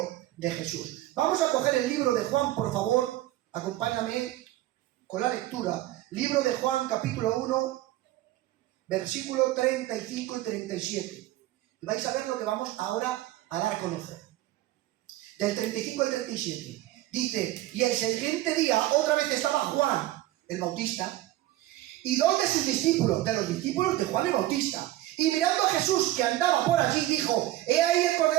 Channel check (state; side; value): quieter; left; 15.6 dB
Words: de Jesús. Vamos a coger el libro de Juan, por favor. Acompáñame con la lectura. Libro de Juan, capítulo 1, versículo 35 y 37. Y vais a ver lo que vamos ahora a dar a conocer. Del 35 al 37. Dice, y el siguiente día otra vez estaba Juan, el Bautista, y dos de sus discípulos, de los discípulos de Juan el Bautista. Y mirando a Jesús que andaba por allí, dijo, he ahí el